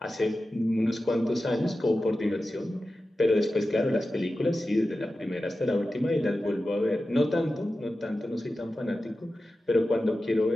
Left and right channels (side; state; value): both; normal; correlation 0.93